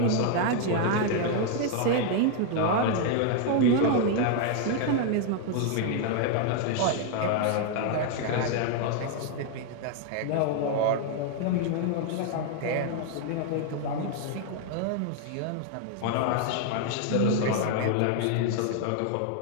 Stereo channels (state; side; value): different; both; correlation 0.00